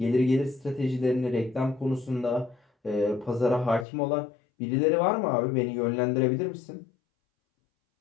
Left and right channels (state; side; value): drops out; right; at 3.9 s